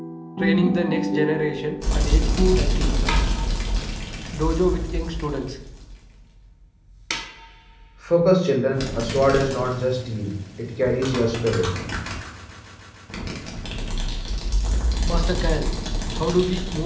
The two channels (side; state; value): both; identical; correlation 1.00